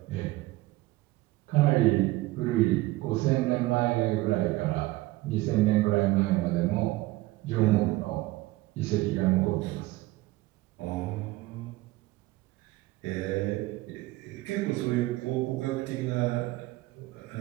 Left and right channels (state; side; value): quieter; left; 18.9 dB